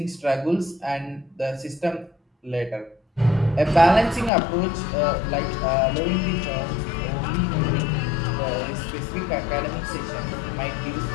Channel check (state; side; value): drops out; right; at 4.3 s